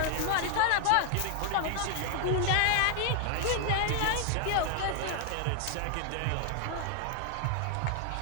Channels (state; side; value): different; both; correlation 0.00